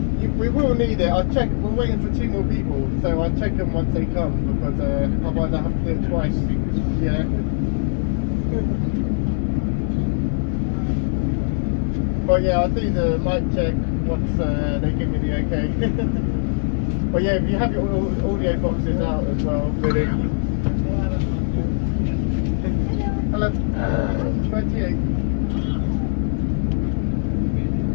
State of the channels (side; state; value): right; silent; 65 dB below the other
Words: We will need it. I'll check. We're waiting for 2 more people, so I'll check them once they come because otherwise I have to do it twice. Yeah. But yeah, I'll do the mic check once they give me the okay. But yeah, if you have your audio boxes out as well, really. Hello. 28.